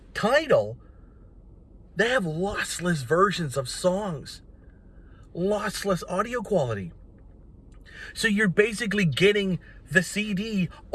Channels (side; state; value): both; identical; correlation 1.00